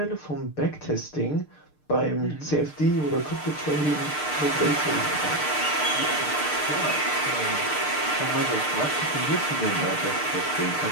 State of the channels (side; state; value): right; late; 6.6 ms